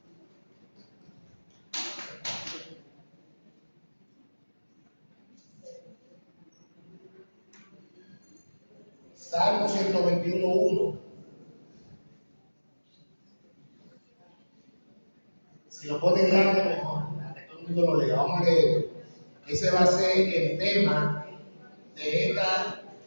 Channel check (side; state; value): both; inverted; correlation -1.00